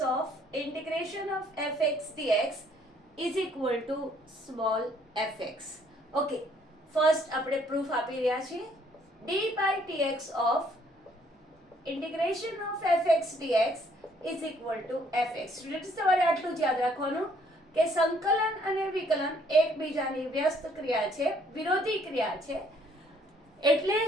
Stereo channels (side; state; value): both; normal; correlation 0.64